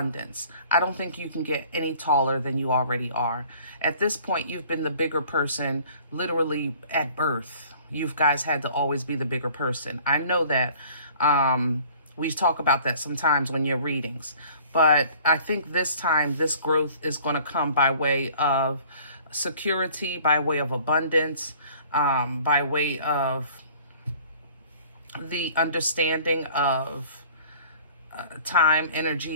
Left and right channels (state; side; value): inverted; both; correlation -0.52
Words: I don't think you can get any taller than you already are. At this point, you've been the bigger person literally at birth. you guys had to always be the bigger person. I know that we talk about that sometimes when you're readings. But I think this time, this growth is going to come by way of security, by way of abundance, by way of the understanding of time,